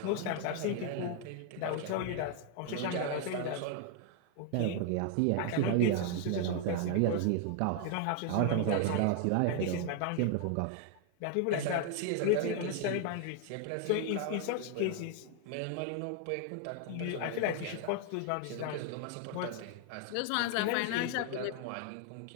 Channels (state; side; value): different; both; correlation 0.00